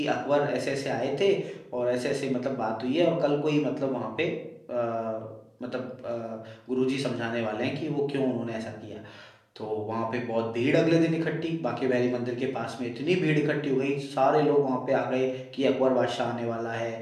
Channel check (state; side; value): identical; both; correlation 1.00